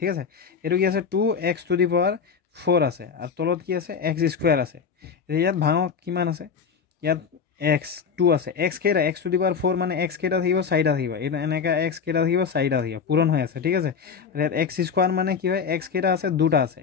আছে। এইটো কি আছে 2x⁴ আছে, আৰু তলত কি আছে x² আছে। ইয়াত ভাঙক কিমান আছে, ইয়াত x2 আছে, x কেইটা x⁴ মানে x কেইটা থাকিব 4টা থাকিব, এইটো এনেকৈ x কেইটা থাকিব 4টা থাকিব, পূৰণ হৈ আছে, ঠিক আছে। আৰু ইয়াত x² মানে কি হয়, x কেইটা আছে 2টা আছে,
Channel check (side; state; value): right; quieter; 6.2 dB